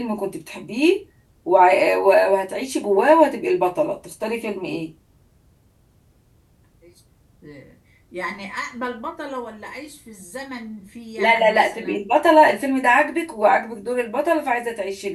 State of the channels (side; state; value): both; identical; correlation 1.00